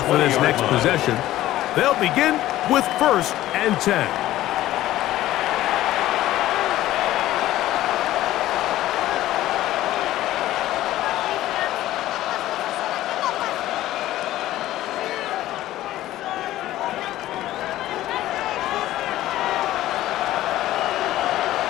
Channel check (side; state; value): right; quieter; 14.8 dB